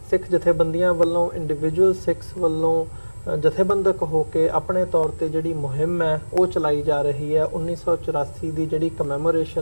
सिख जथेबंदियां वालों, इंडिविजुअल सिख्स वालों जथेबंदक होकर अपने तौर पर जिहड़ी मुहिम है वो चलाई जा रही है। 1984 की जिहड़ी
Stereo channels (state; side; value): inverted; both; correlation -1.00